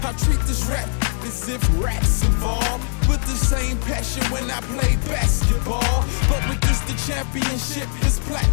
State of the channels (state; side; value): silent; right; digital silence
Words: I treat this rap as if rap's involved, with the same passion when I play basketball. But with this the championship is